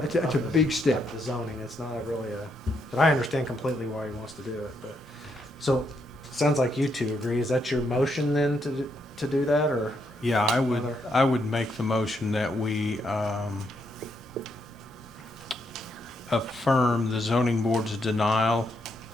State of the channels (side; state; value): both; normal; correlation 0.77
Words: That's a big step. the zoning. It's not really but I understand completely why he wants to do it. But so sounds like you two agree. Is that your motion then to do that, or? Yeah, Other- I would make the motion that we affirm the zoning board's denial